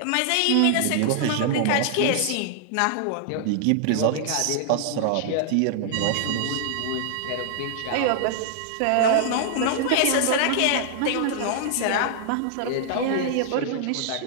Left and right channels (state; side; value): different; both; correlation -0.01